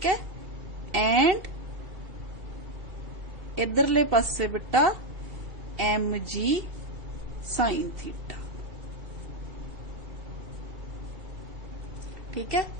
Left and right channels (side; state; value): left; late; 2.4 ms